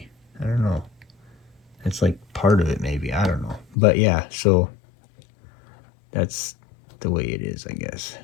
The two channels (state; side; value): drops out; right; at 3.8 s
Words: I don't know, it's like part of it maybe, I don't know. But yeah, so that's the way it is, I guess.